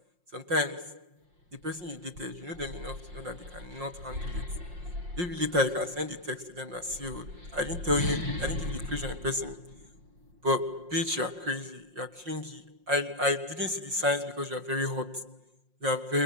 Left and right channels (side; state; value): left; late; 5.6 ms